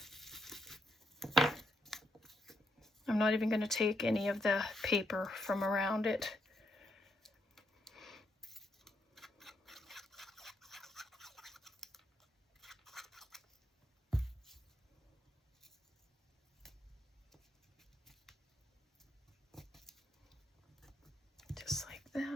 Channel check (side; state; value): both; normal; correlation 0.77